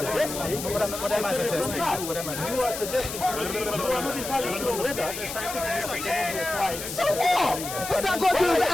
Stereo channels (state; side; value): noise; left; hiss, 7 dB below the sound